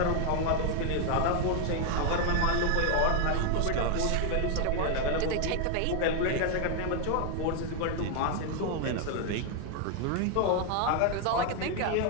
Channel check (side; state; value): both; different; correlation 0.01